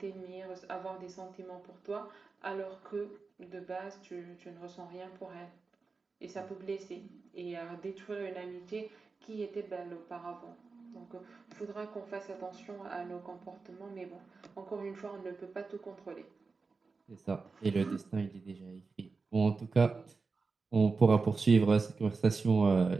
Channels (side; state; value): left; quieter; 4.4 dB